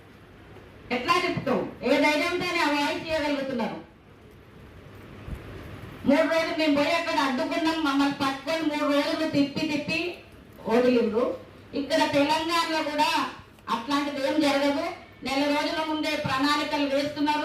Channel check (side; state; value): both; identical; correlation 1.00